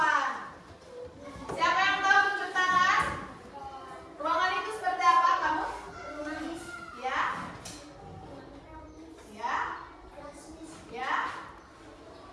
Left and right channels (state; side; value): identical; both; correlation 1.00